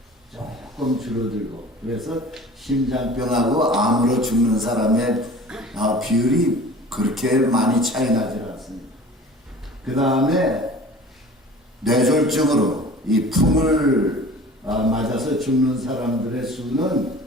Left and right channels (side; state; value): both; normal; correlation 0.43